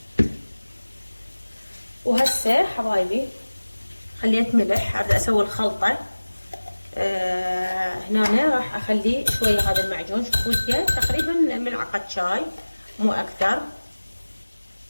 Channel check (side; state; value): both; inverted; correlation -1.00